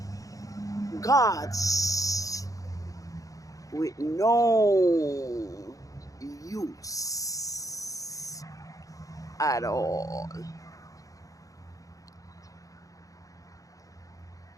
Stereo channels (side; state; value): right; late; 0.17 ms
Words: gods with no use at all.